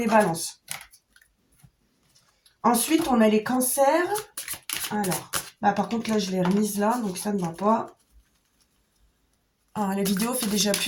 balances. Ensuite, on a les cancers. Alors, bah par contre, là, je l'ai remise là, donc ça ne va pas. Alors, la vidéo fait déjà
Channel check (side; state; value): both; identical; correlation 1.00